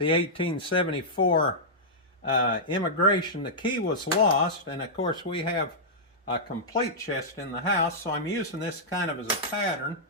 1874 immigration. The key was lost, and of course we have a complete chest in the house, so I'm using this kind of as a pattern.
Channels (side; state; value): both; normal; correlation -0.11